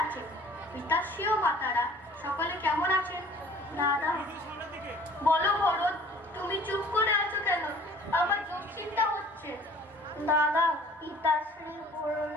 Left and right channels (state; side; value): normal; both; correlation 0.51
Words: আছেন? পিতাশ্রী ও মাতারা সকলে কেমন আছেন? দাদা বলো ভরত, তুমি চুপ করে আছো কেন? আমার দুশ্চিন্তা হচ্ছে। দাদা, পিতাশ্রী